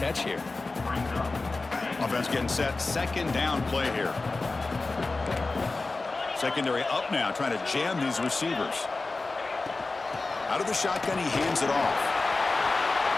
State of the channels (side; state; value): right; quieter; 3.5 dB